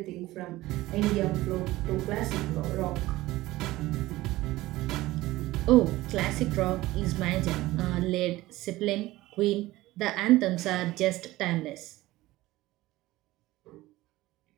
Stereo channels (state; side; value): quieter; left; 17.8 dB